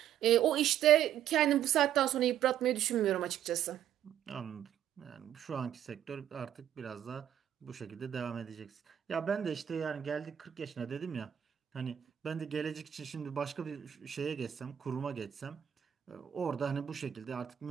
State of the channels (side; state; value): left; quieter; 10.3 dB